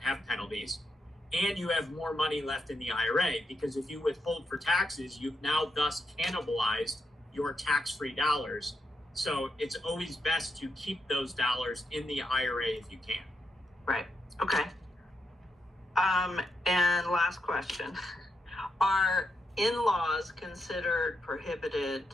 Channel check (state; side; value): normal; both; correlation 0.83